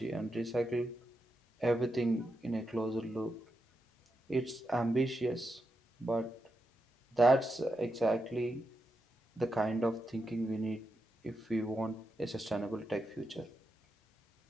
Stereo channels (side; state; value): both; normal; correlation 0.86